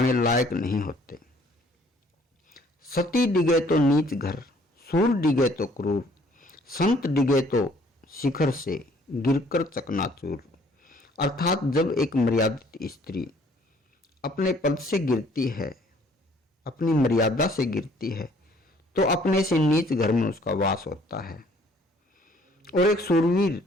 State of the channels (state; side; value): normal; both; correlation 0.59